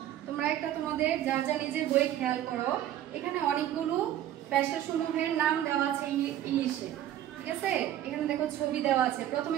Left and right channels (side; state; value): left; quieter; 12.1 dB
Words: তোমরা একটা তোমাদের যা যা নিজের বই খেয়াল করো, এখানে অনেকগুলো পেশাসমূহের নাম দেওয়া আছে ইংলিশে, ঠিক আছে? এখানে দেখো ছবি দেওয়া আছে। প্রথমে